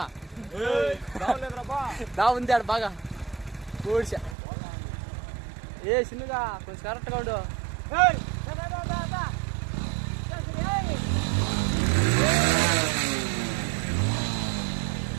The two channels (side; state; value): left; drops out; at 4.4 s